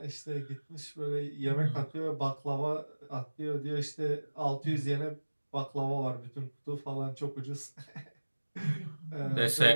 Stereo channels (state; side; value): inverted; both; correlation -1.00